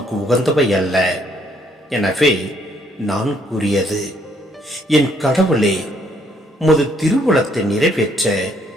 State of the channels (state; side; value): normal; both; correlation 0.68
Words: உகந்தவை அல்ல. எனவே நான் கூறியது, என் கடவுளே, உமது திருவுளத்தை நிறைவேற்ற